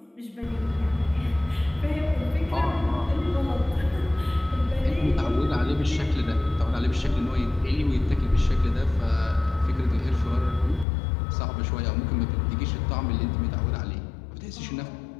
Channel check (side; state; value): right; drops out; at 10.9 s